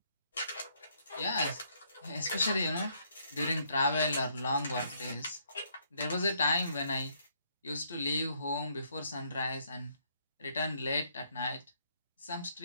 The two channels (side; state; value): both; inverted; correlation -0.70